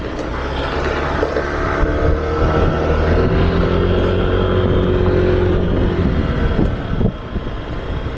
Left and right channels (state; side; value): identical; both; correlation 1.00